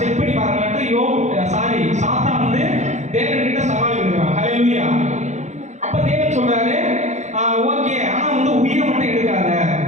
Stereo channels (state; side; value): late; left; 0.34 ms